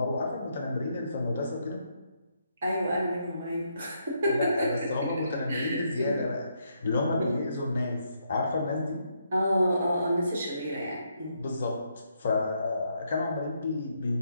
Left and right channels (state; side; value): inverted; both; correlation -0.77